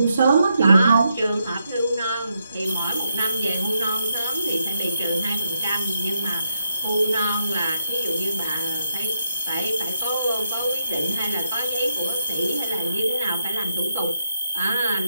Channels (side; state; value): both; inverted; correlation -0.81